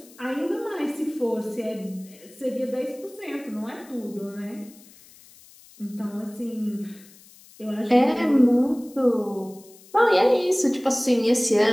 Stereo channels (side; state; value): left; noise; hiss, 24 dB below the sound